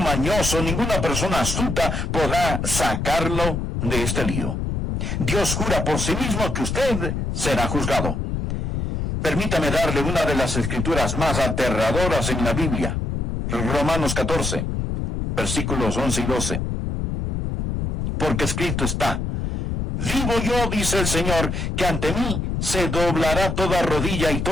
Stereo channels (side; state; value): left; noise; rumble, 2 dB below the sound